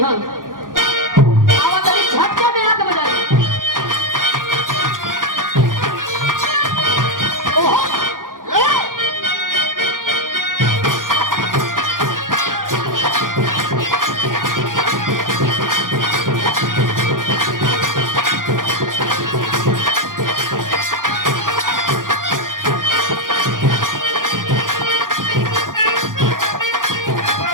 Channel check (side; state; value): left; late; 0.90 ms